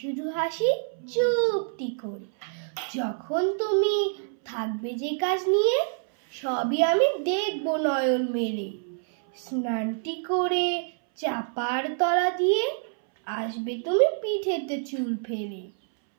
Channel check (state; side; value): silent; left; 60 dB below the other